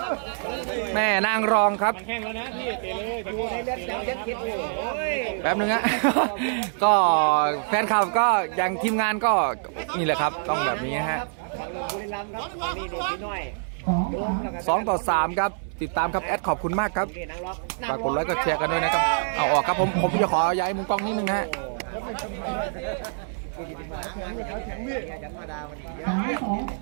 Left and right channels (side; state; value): left; silent; digital silence